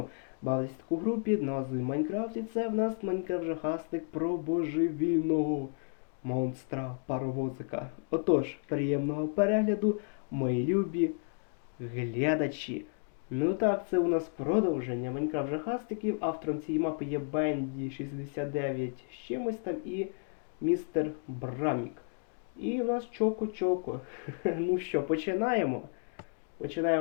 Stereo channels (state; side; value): silent; right; 56 dB below the other